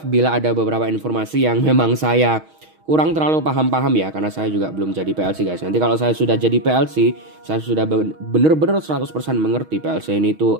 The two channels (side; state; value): left; late; 6.3 ms